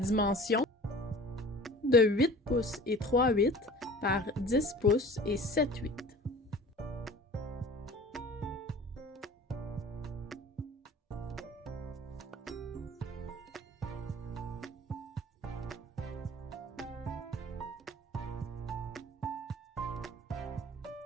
de 8 pouces et 3/8 par 10 pouces et 7/8.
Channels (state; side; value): normal; both; correlation 0.43